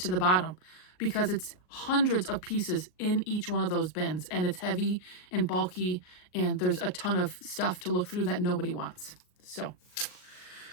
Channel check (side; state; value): right; late; 39 ms